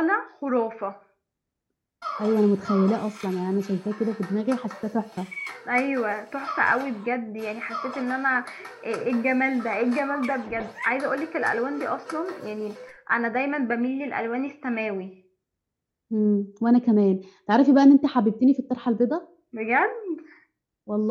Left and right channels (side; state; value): both; identical; correlation 1.00